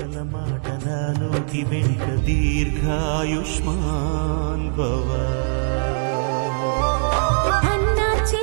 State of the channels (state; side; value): silent; left; digital silence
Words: మాట నా నోటి వెంట దీర్ఘాయుష్మాన్ భవ. అన్న